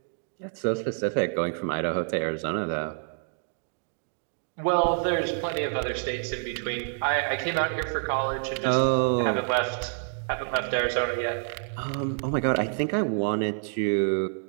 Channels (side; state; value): left; silent; digital silence